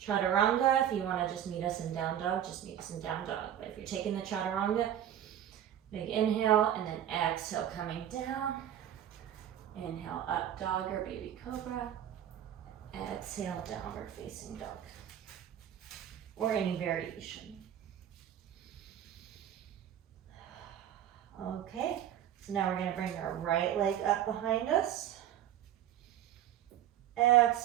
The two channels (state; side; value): quieter; left; 10.7 dB